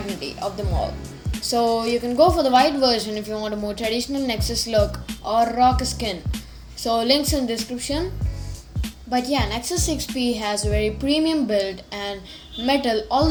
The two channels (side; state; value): both; identical; correlation 1.00